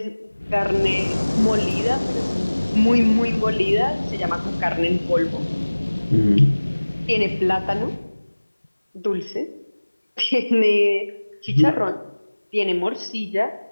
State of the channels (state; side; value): inverted; both; correlation -1.00